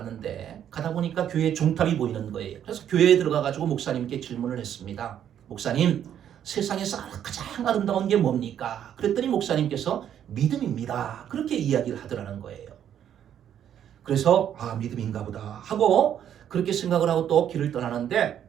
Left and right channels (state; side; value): quieter; left; 9.8 dB